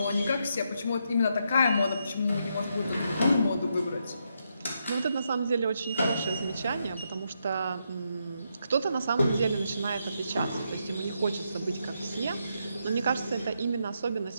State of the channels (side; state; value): both; inverted; correlation -0.80